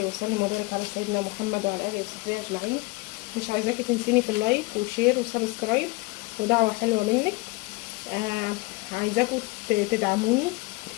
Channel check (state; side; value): quieter; right; 23.9 dB